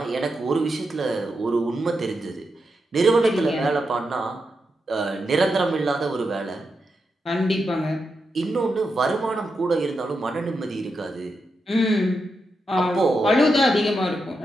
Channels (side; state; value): both; normal; correlation 0.86